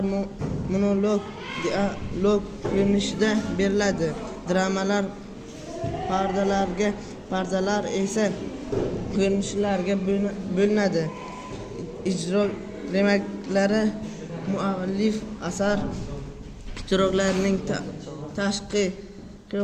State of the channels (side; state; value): both; identical; correlation 1.00